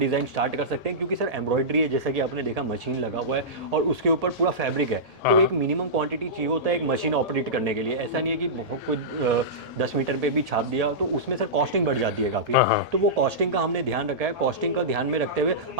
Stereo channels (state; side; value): late; left; 1.8 ms